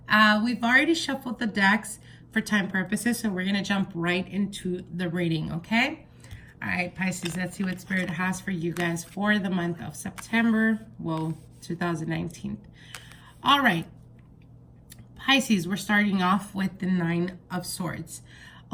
We've already shuffled the decks for time purposes, so we're going to jump right into the reading, okay? All right, Pisces, let's see what Spirit has for you guys for the month of September, 2019. All right, Pisces, we're starting off with the Nine of Swords.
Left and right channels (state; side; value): identical; both; correlation 1.00